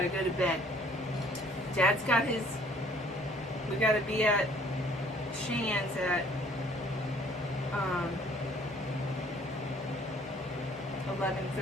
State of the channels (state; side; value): normal; both; correlation 0.58